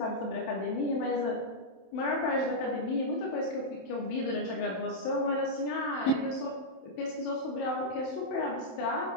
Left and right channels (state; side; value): late; right; 27 ms